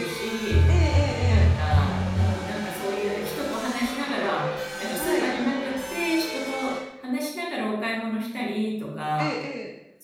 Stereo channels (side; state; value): both; identical; correlation 1.00